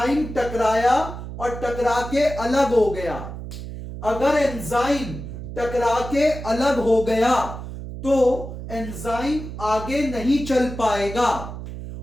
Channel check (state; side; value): noise; right; hum, 9 dB below the sound